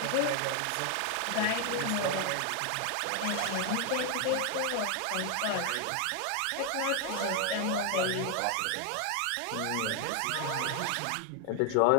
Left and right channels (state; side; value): different; both; correlation 0.00